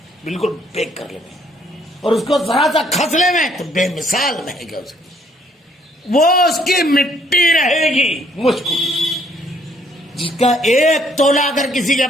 بالکل پیک کر لیں. اور اس کو ذرا سا کھس لیں تو بے مثال مہک ہے اس کی. وہ اس کی مٹی رہے گی مشک، جس کا ایک تولہ اگر کسی کے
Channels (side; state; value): both; normal; correlation 0.65